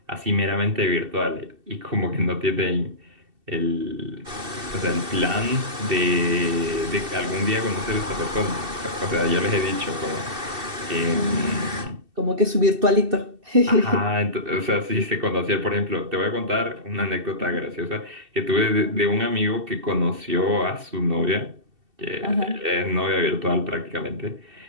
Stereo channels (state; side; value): late; left; 2.7 ms